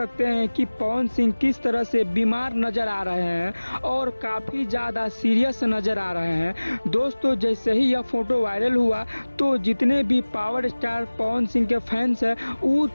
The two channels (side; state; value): both; inverted; correlation -1.00